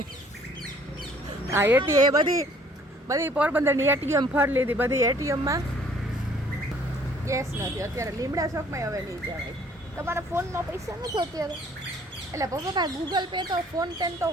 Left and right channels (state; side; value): normal; both; correlation 0.58